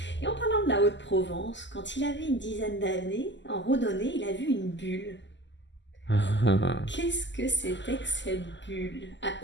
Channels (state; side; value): late; right; 0.53 ms